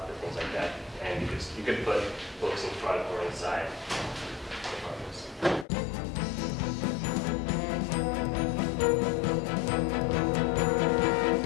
of it, things like that. And you could put books in front or inside.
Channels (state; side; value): drops out; right; at 5.7 s